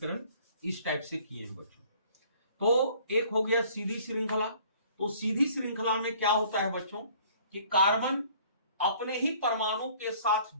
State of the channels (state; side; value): inverted; both; correlation -0.55